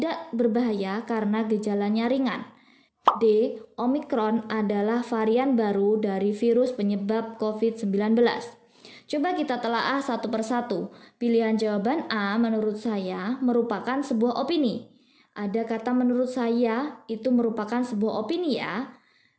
berbahaya karena gejalanya ringan. D. Omikron adalah varian baru dari virus penyebab COVID-19. Coba kita telaah satu persatu. Pilihan jawaban A menurut saya merupakan sebuah opini. Ada kata menurut saya itu merupakan sebuah opini ya.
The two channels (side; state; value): both; identical; correlation 1.00